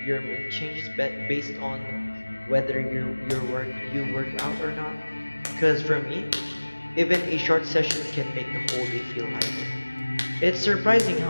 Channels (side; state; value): both; inverted; correlation -1.00